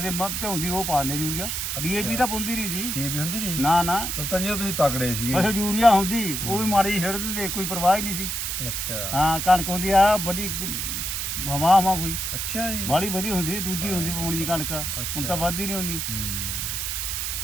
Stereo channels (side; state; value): right; noise; hiss, 2 dB below the sound